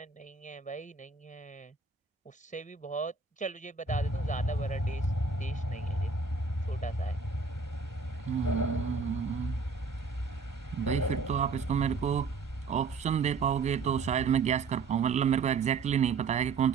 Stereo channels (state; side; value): quieter; left; 4.7 dB